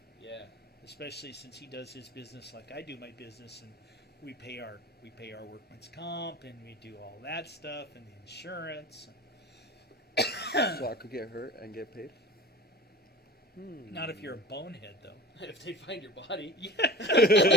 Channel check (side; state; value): both; normal; correlation 0.36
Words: Yeah. Especially since he does his business like I do my business, and we pay our workman's comp, and we do all that stuff, and the insurance. So I could get hurt and get paid? Not if you're a bonehead, though. If they find your body.